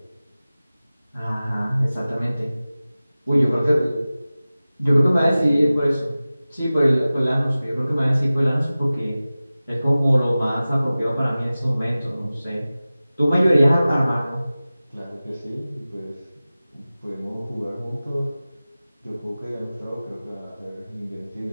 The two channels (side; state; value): both; inverted; correlation -0.97